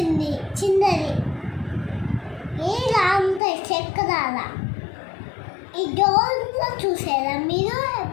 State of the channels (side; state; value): right; drops out; at 3.4 s